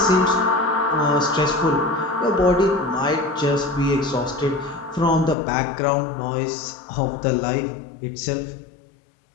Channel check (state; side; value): drops out; right; at 5.4 s